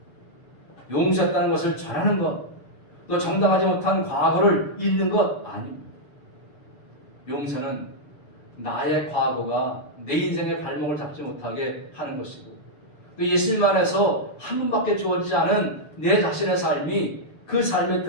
용서했다는 것을 전하는 것, 또 정당하지 못한 과거를 잊는 것 아닙니다. 용서는 나의 과거가 내 인생의 발목을 잡지 못하게 하는 것이고, 또 예수님 안에서 한 번밖에 주어지지 않은 내 자신의 삶이 그 삶의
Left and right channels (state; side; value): late; right; 6.8 ms